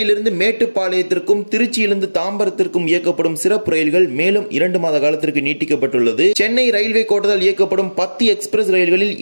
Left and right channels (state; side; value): inverted; both; correlation -1.00